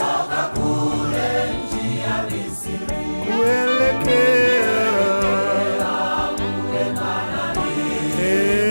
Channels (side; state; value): both; inverted; correlation -1.00